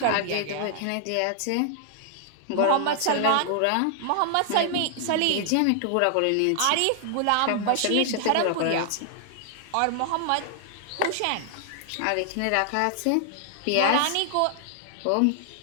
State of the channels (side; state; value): both; different; correlation 0.00